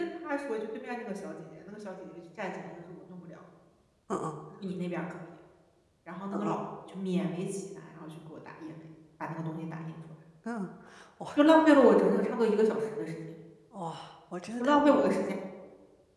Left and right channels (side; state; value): both; identical; correlation 1.00